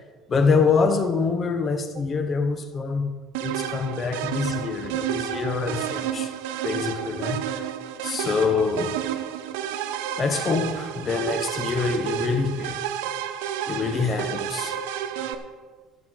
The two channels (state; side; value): normal; both; correlation 0.53